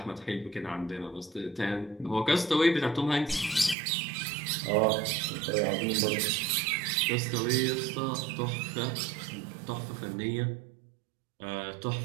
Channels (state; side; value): drops out; left; at 3.8 s